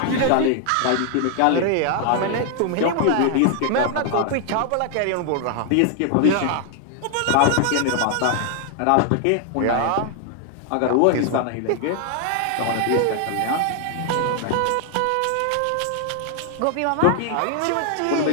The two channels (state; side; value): different; both; correlation 0.00